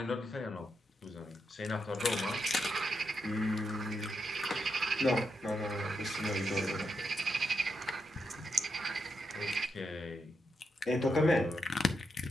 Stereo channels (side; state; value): both; normal; correlation 0.83